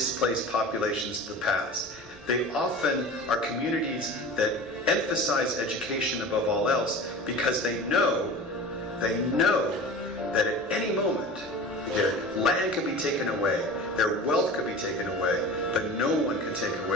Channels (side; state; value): both; normal; correlation 0.36